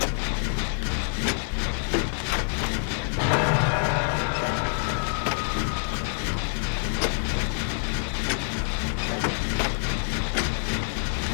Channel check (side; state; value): right; silent; digital silence